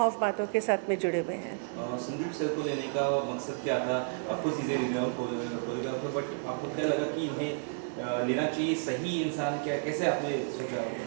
बातों के साथ में जुड़े हुए हैं। संदीप सर को लेने का मकसद क्या था? आपको चीज़ें बट आपको क्या लगा कि इन्हें लेना चाहिए? सही इंसान क्या, कैसे आपने सोचा?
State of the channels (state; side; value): silent; left; digital silence